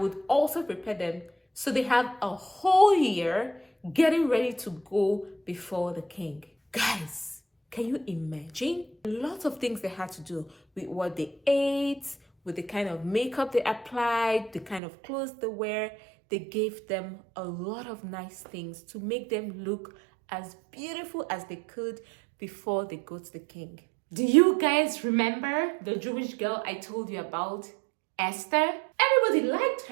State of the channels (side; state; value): left; drops out; at 14.8 s